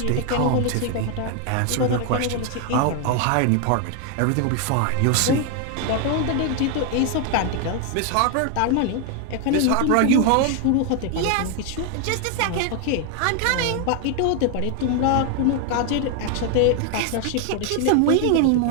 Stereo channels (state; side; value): different; both; correlation 0.01